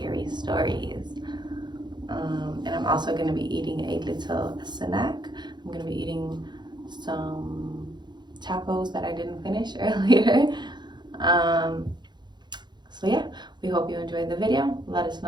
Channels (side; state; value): left; late; 0.21 ms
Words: stories. And I'm also going to be eating a little snack. I'm going to be eating some tacos that I didn't finish earlier. So yeah, we hope you enjoyed the video. Let us